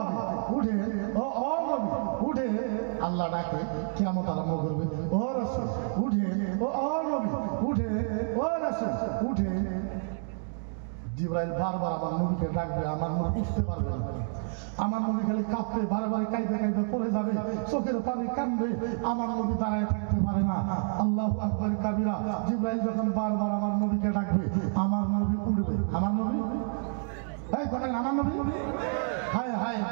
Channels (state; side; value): silent; left; 58 dB below the other